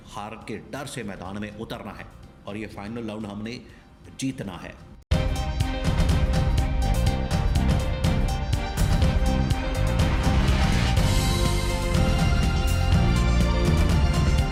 हार के डर से मैदान में उतरना है और ये फाइनल राउंड हमने जीतना है।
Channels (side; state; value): both; identical; correlation 1.00